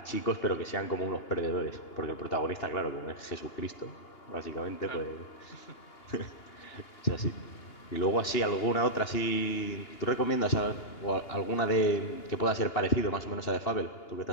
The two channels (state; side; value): late; right; 2.9 ms